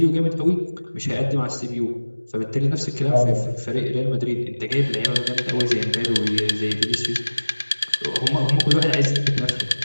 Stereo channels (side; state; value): both; inverted; correlation -1.00